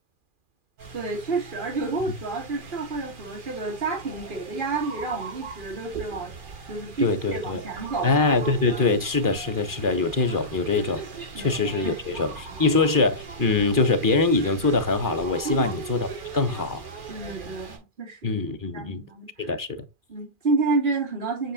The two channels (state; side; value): late; left; 2.4 ms